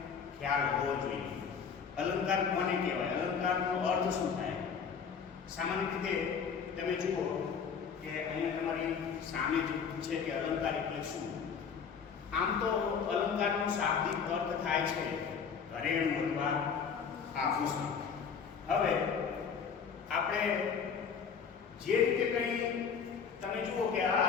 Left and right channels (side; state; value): right; quieter; 6.4 dB